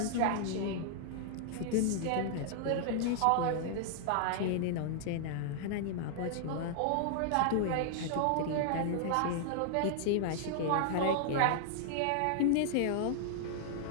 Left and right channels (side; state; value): both; different; correlation -0.01